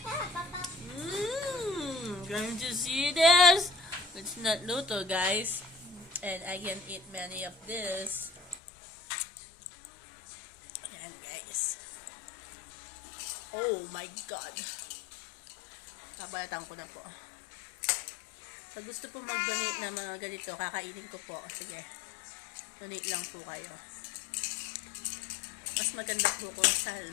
Going to see this? It's not luto, guys. And I can eat many of this. Ayan, guys. Oh my God. Kabalatan ko na po. Pag gusto po mag-donate na mga ganito, kakainin ko po. Sige. Donate lang po kayo. Mas maganda po kung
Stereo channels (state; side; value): drops out; right; at 8.6 s